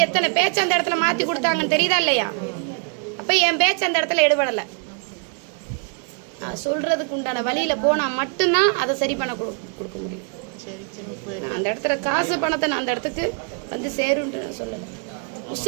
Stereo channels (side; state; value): left; quieter; 39.9 dB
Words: எத்தனை பேச்சு அந்த இடத்துல மாத்தி கொடுத்தாங்கன்னு தெரியுதா இல்லையா? அப்ப என் பேச்சு அந்த இடத்துல எடுபடல. சொல்றதுக்கு உண்டான வழியில போனா மட்டும்தான் அதை சரி பண்ண கொடுக்க முடியும். அந்த இடத்துல காசு பணத்தை நான் அந்த இடத்துக்கு வந்து சேருன்னு நான் சொல்லல.